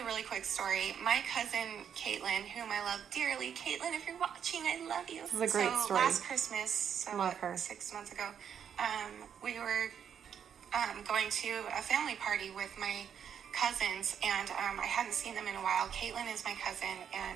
a really quick story. My cousin, Caitlin, whom I love dearly. Caitlin, if you're watching, I love you. This is a great story. Last Christmas, so love her. 6 months ago, we were going to a family party with my cousins, and I hadn't seen them in a while. Caitlin is my cousin,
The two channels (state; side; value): quieter; left; 8.2 dB